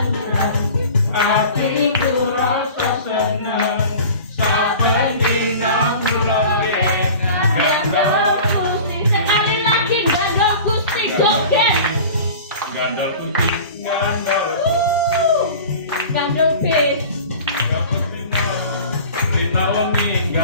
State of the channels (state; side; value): inverted; both; correlation -0.40